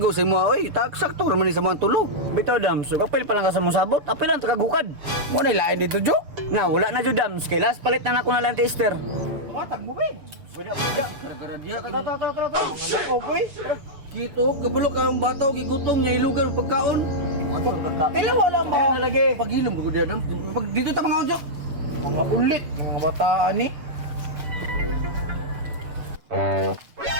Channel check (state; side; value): late; left; 7.3 ms